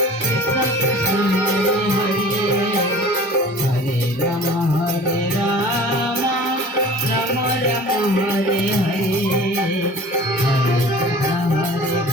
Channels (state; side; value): normal; both; correlation 0.43